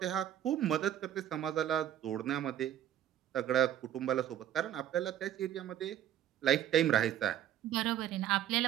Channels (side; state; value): left; quieter; 11.1 dB